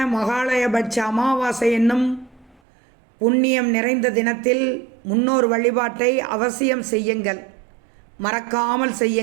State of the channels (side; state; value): left; drops out; at 2.6 s